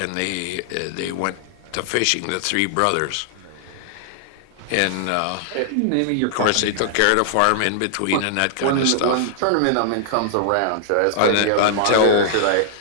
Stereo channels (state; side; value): different; both; correlation -0.01